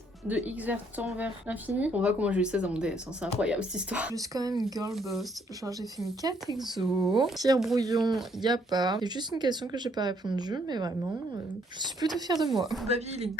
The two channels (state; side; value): normal; both; correlation 0.68